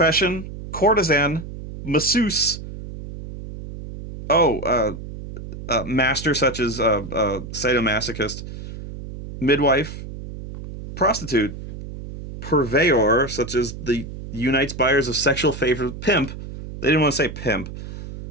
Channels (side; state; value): right; noise; hum, 11 dB below the sound